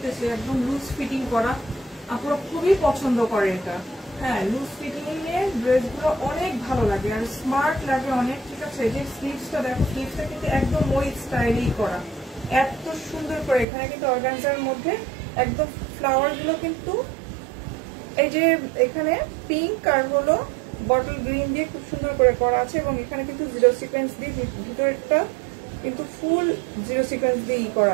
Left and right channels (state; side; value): drops out; left; at 13.7 s